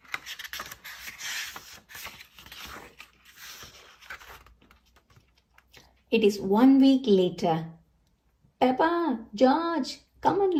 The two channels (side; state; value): both; identical; correlation 1.00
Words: It is 1 week later. Peppa, George, come